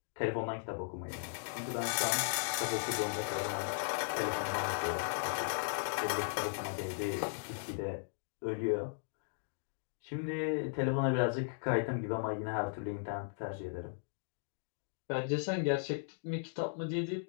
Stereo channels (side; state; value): right; silent; digital silence